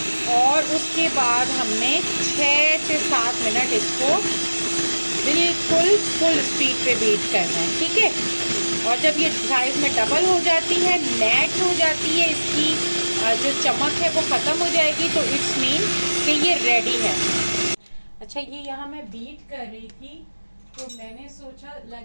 और उसके बाद हमने 6 से 7 मिनट इसको बिल्कुल फुल स्पीड पे बीट करना है, ठीक है। और जब ये साइज में डबल हो जाती है, मैट हो जाती है, इसकी जो चमक है वो ख़त्म हो जाएगी, तो इट्स मीन कि ये रेडी है। अच्छा, ये यहाँ मैं बीट कर रही थी तो मैंने सोचा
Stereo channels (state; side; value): inverted; both; correlation -1.00